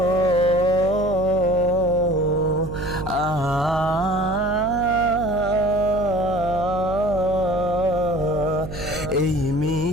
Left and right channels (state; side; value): noise; right; hum, 10 dB below the sound